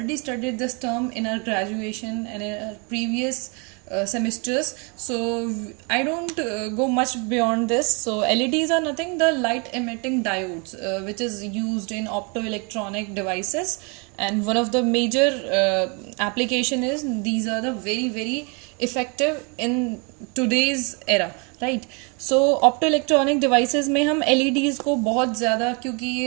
studied this term in our graduation and in our previous semesters. So I don't go much beyond this. So LEDs are nothing, the light emitting diodes, which is used in optoelectronic devices. And one of the major application is these are the very effective in today's era, right? So optoelectronic devices में हम LEDs को बहुत ज़्यादा, क्योंकि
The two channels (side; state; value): left; quieter; 33.0 dB